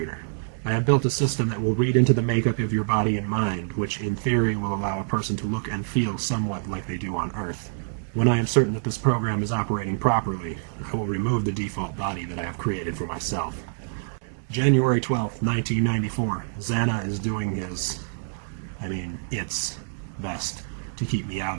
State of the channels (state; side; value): silent; left; digital silence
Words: I have built a system that will read into the makeup of your body and mind, which in theory will allow a person to look and feel somewhat like they do on Earth. When I am certain that this program is operating properly, I will remove the default body that I have created for myself. January 12th, 1994. Zanna is doing its best to keep me out